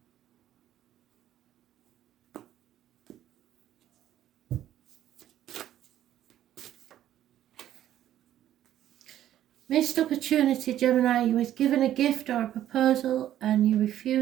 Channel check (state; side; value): quieter; left; 12.0 dB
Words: Missed opportunity, Gemini. You was given a gift or a proposal and you